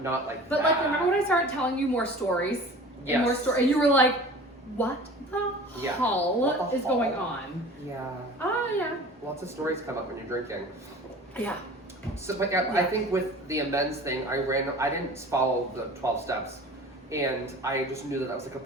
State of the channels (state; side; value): normal; both; correlation 0.41